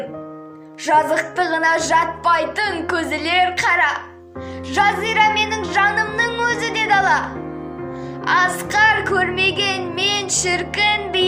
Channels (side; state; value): both; identical; correlation 1.00